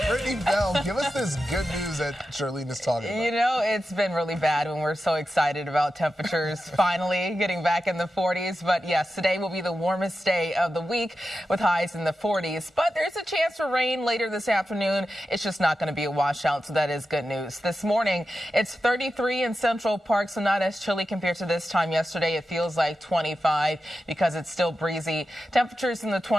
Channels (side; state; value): both; normal; correlation 0.91